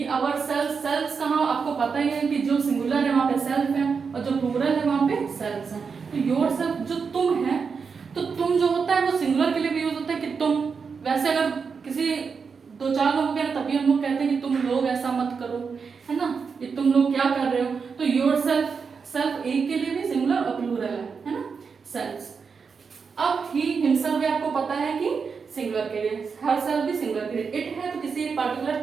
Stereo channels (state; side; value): quieter; left; 5.6 dB